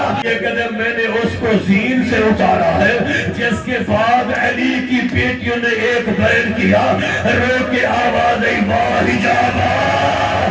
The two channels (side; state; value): both; identical; correlation 1.00